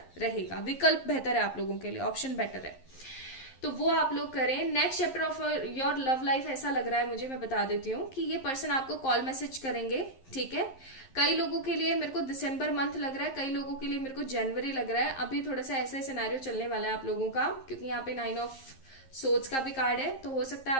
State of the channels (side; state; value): right; late; 11 ms